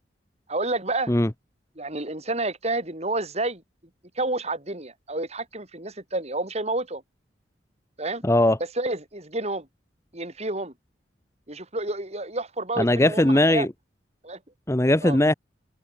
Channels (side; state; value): both; normal; correlation 0.55